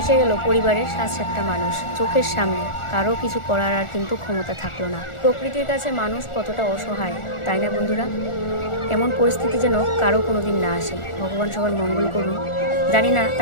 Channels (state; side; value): late; right; 1.4 ms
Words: ভেসে গেল পরিবারের 7-7টা মানুষ চোখের সামনে। কারো কিছু করার আর কিন্তু ক্ষমতা থাকলো না। প্রকৃতির কাছে মানুষ কতটা অসহায়, তাই না বন্ধুরা? এমন পরিস্থিতি যেন কারো কোনোদিন না আসে। ভগবান সবার মঙ্গল করুন। জানি না